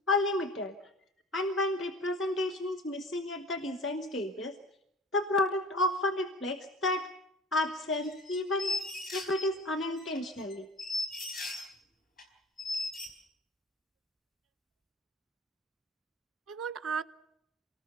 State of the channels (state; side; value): normal; both; correlation 0.42